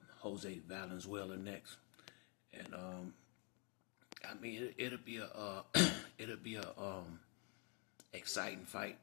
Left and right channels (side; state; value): right; quieter; 34.8 dB